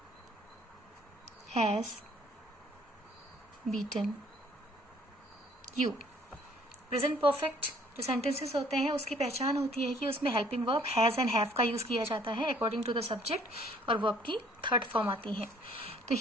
has beaten you। Present perfect जो सेंटेंसेस होते हैं उसकी पहचान होती है कि उसमें helping verb has and have का यूज किया जाता है अकॉर्डिंग टू द सब्जेक्ट और वर्ब की थर्ड फॉर्म आती है। तो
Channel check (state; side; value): normal; both; correlation 0.59